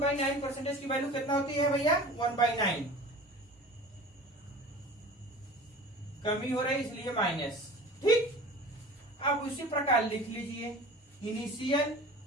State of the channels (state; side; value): normal; both; correlation 0.40